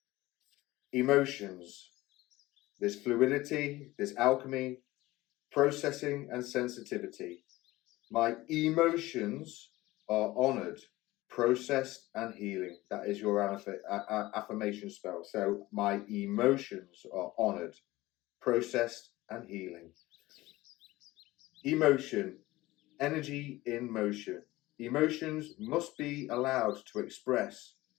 Emotions. There's fluidity, there's alchemy, processing and sensitivity. My emotions are honoured, processed and healing. That is your affirmation spell. So my emotions are honoured, processed and healing. Emotion. Energy in motion. Emotions must be allowed to express.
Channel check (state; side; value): quieter; right; 18.5 dB